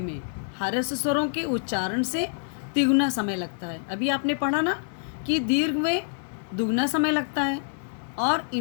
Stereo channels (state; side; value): silent; right; 61 dB below the other